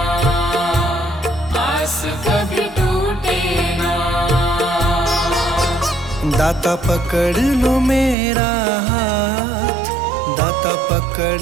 आस कभी टूटे ना। दाता पकड़ लो मेरा हाथ, दाता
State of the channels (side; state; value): left; drops out; at 8.2 s